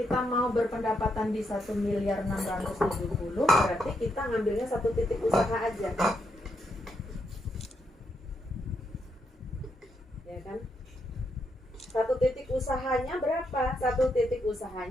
mau berpendapatan di 1.670.000, berarti kita ngambilnya satu titik usaha aja. Ya kan? Satu titik usahanya berapa? Satu titik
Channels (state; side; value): normal; both; correlation 0.80